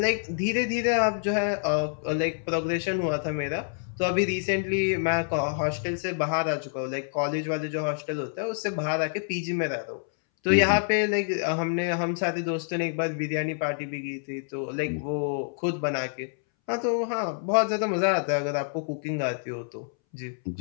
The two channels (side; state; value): right; silent; 60 dB below the other